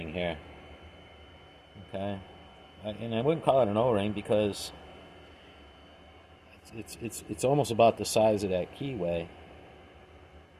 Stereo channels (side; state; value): both; identical; correlation 1.00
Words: here. Okay. And I wouldn't call it an O-ring because it's almost about the size of that keyway.